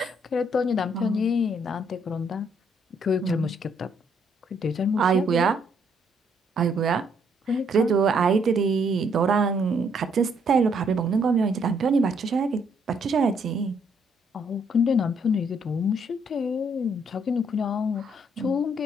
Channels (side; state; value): both; normal; correlation 0.70